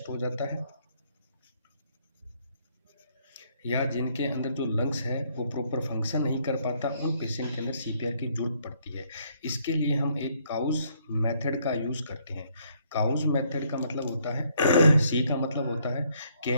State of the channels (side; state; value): both; inverted; correlation -0.69